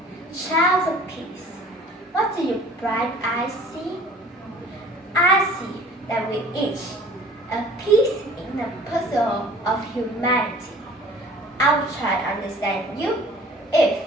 child of peace, what do your bright eyes see? I see that we each a piece in the puzzle of humanity. I will try to understand you if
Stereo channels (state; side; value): normal; both; correlation 0.49